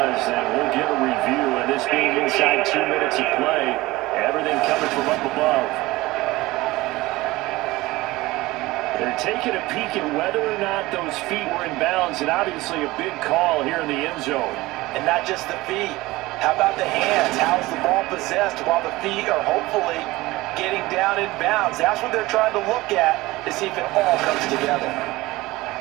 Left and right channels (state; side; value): quieter; left; 19.6 dB